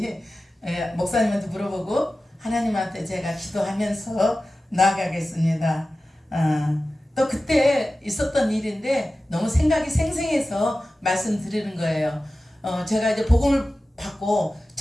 목사님한테 물어보고 하나님한테 제가 기도하면서 나아가겠습니다. 또 그때 있었던 일인데 너무 생각이 생생해서 말씀드리는 거예요. 제가 이제 복음을 받고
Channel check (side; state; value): both; normal; correlation 0.95